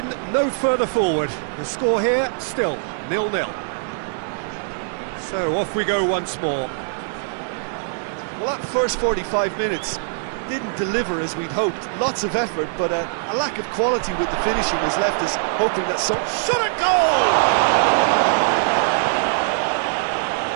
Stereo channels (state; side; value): silent; left; 64 dB below the other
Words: no further forward. The score here, still 0-0. So off we go once more. Well, that first 45 minutes didn't deliver as we'd hoped. Lots of effort, but a lack of quality with the finishing has left us hoping that some... Shot a goal!